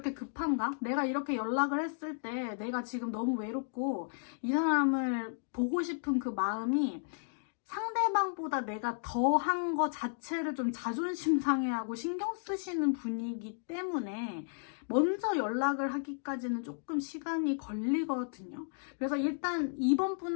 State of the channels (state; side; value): silent; right; digital silence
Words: 급한가? 내가 이렇게 연락을 했을 때 내가 지금 너무 외롭고 이 사람을 보고 싶은 그 마음이 상대방보다 내가 더 한 거 자체를 좀 자존심 상해하고 신경 쓰시는 분이기 때문에 먼저 연락을 하기까지는 조금 시간이 걸리거든요. 그래서 일단 이번